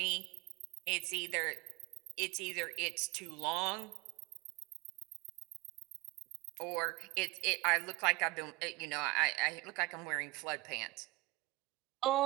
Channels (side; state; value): left; quieter; 23.0 dB